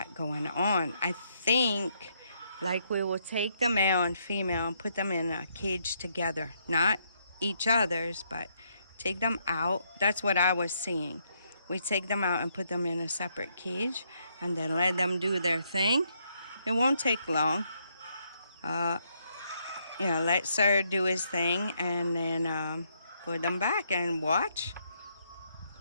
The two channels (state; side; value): inverted; both; correlation -0.74